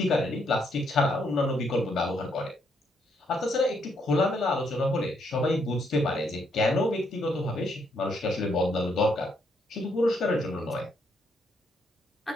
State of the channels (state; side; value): normal; both; correlation 0.74